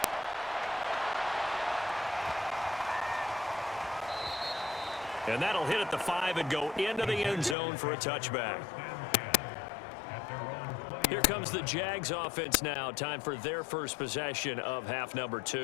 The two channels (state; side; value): drops out; right; at 7.6 s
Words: And that'll hit at the 5 and go into the end zone for a touchback. Here comes the Jags offense now. Time for their first possession of half number